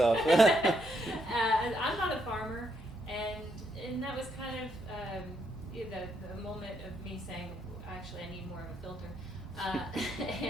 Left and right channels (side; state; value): right; noise; hum, 17 dB below the sound